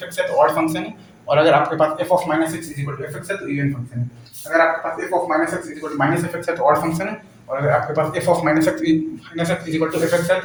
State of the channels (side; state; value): both; identical; correlation 1.00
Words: x है तो ऑड फंक्शन है। और अगर आपके पास f of minus x is equal to f x है तो इवन फंक्शन है। अगर आपके पास f of minus x is equal to minus f x है तो ऑड फंक्शन है। और अगर आपके पास f of minus x is equal to f x है